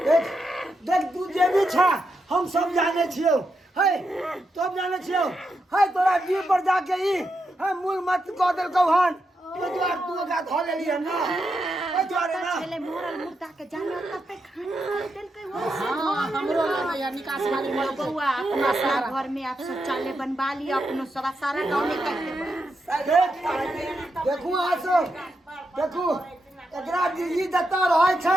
देख देख तू जे भी छा हम सब जाने छियो, है सब जाने छियो, है तोरा जीव पर जाके ई है मूल मत कह देलकौ हन, तो द्वार तू ओकरा धो लेली है ना, है द्वारे ना पहले मोरल मुर्दा के जाने ओता पे खाना देल के हो हमरो या निकास वाली बउआ अपना सारा घर में आप शौचालय बनवा लियो, अपनो सब सारा गांव में कर देबो। देखू आसो देखू एकरा ई जतऽ रहै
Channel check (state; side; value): normal; both; correlation 0.84